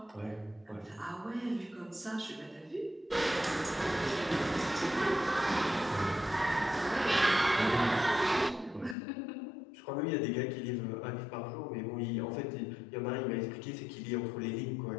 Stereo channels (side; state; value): right; drops out; at 9.0 s